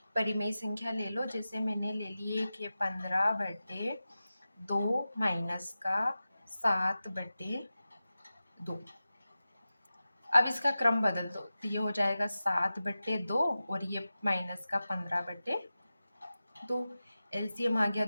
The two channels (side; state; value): both; inverted; correlation -0.94